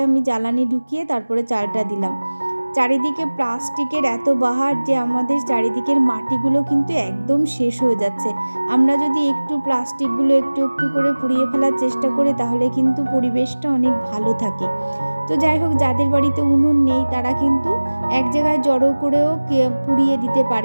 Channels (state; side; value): inverted; both; correlation -1.00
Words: আমি জ্বালানি ঢুকিয়ে তারপরে চালটা দিলাম। চারিদিকে প্লাস্টিকের এত বাহার যে আমাদের চারিদিকের মাটিগুলো কিন্তু একদম শেষ হয়ে যাচ্ছে। আমরা যদি একটু প্লাস্টিকগুলো একটু একটু করে পুড়িয়ে ফেলার চেষ্টা করি তাহলে কিন্তু পরিবেশটা অনেক ভালো থাকে। তো যাই হোক, যাদের বাড়িতে উনুন নেই তারা কিন্তু এক জায়গায় জড়ো করেও পুড়িয়ে দিতে